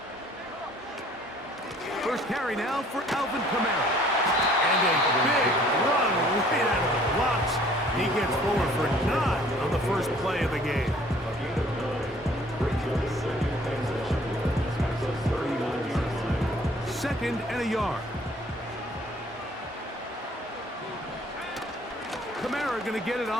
First carry now for Alvin Kamara. And a big run right out of the blocks. He gets forward for 9 on the first play of the game. Second and a yard. Kamara going to get it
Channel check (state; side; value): normal; both; correlation 0.56